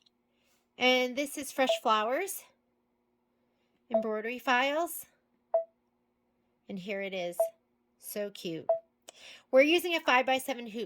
And this is Fresh Flowers, embroidery files. And here it is. So cute. We're using a 5x7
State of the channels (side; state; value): both; identical; correlation 1.00